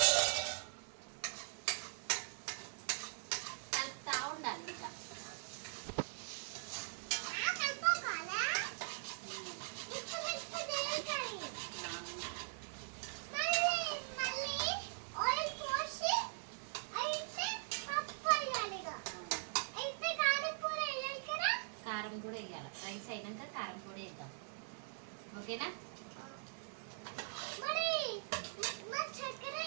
కలుపుతా ఉండాలి. ఇంకా కారం కూడా వేయాలి. రైస్ అయినాక కారం కూడా వేద్దాం. ఓకేనా?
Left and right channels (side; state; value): left; silent; digital silence